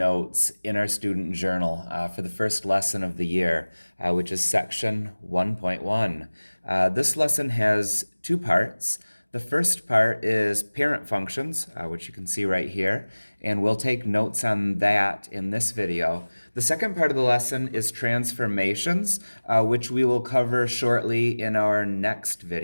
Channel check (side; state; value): both; inverted; correlation -1.00